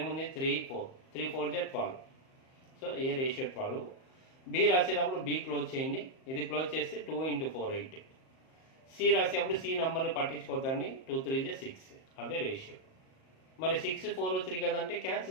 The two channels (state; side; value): late; right; 38 ms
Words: ఏముంది 3 4 3 4 12. సో ఏ రేషియో 12. బి రాసేటప్పుడు బి క్లోజ్ చేయండి. ఇది క్లోజ్ చేస్తే 2 × 4 8. సి రాసేటప్పుడు సి నెంబర్ని పట్టించుకోద్దండి. 2 3 6. అదే రేషియో. మరి 6 4 3 కదంటే